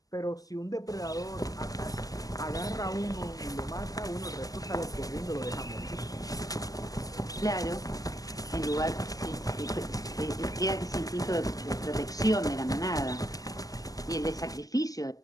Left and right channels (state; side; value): late; right; 0.17 ms